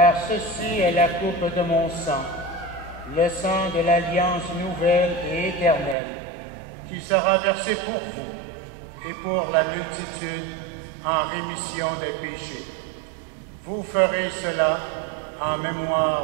ceci est la coupe de mon sang, le sang de l'alliance nouvelle et éternelle, qui sera versé pour vous et pour la multitude en rémission des péchés. Vous ferez cela en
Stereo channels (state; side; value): drops out; left; at 6.0 s